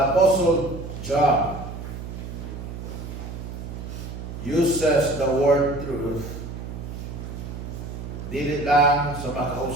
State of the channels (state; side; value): noise; right; hum, 8 dB below the sound